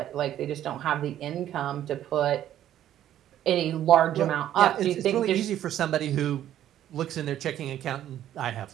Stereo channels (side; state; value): left; quieter; 11.7 dB